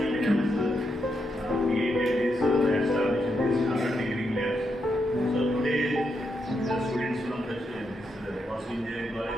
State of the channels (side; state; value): both; normal; correlation 0.82